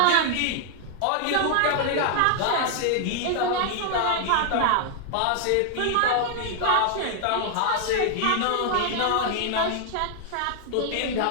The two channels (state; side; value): different; both; correlation 0.00